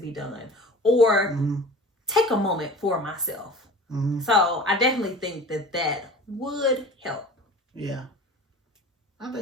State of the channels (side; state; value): both; normal; correlation 0.40